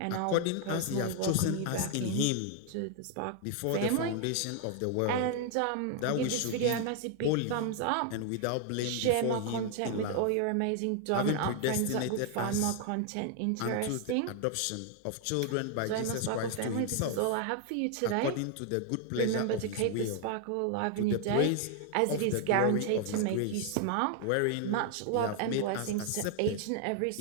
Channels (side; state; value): both; different; correlation 0.00